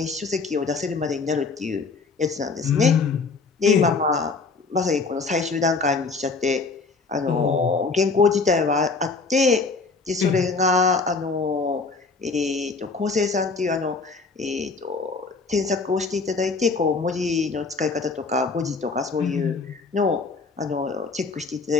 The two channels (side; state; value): right; quieter; 4.3 dB